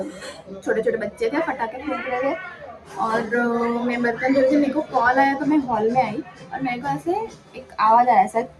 छोटे छोटे बच्चे थे, पटाखे फोड़ रहे थे। और मैं बर्तन धो रही थी, मेरे को कॉल आया तो मैं हॉल में आई और मेरे को ऐसे एक आवाज़ आया, ऐसा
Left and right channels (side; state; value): both; identical; correlation 1.00